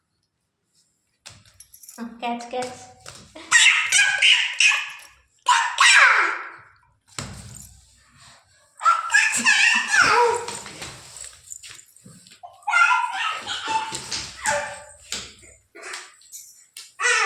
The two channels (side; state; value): both; identical; correlation 1.00